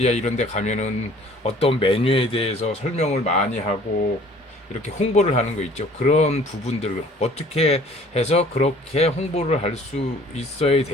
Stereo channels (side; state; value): both; normal; correlation 0.53